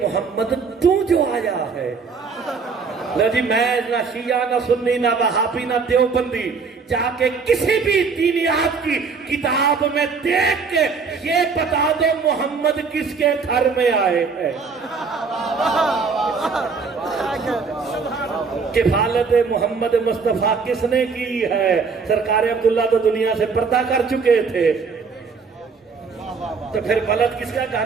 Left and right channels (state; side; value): quieter; left; 5.1 dB